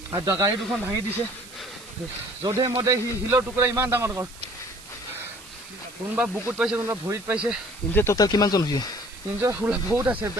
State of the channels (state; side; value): noise; right; hiss, 19 dB below the sound